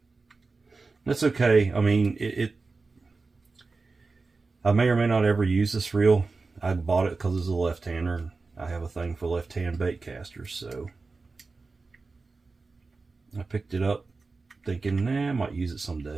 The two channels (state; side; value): quieter; left; 4.0 dB